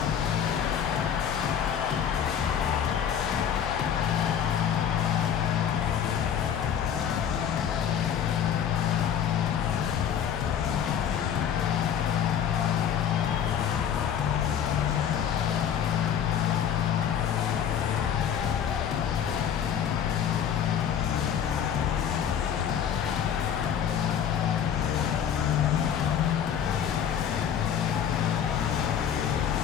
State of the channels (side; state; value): right; quieter; 8.7 dB